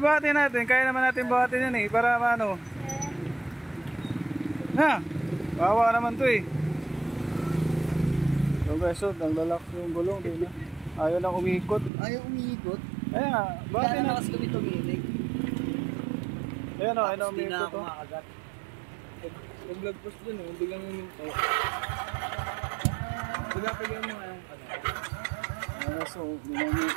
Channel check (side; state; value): left; drops out; at 11.9 s